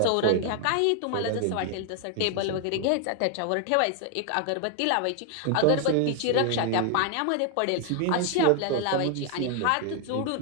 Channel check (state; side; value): different; both; correlation 0.00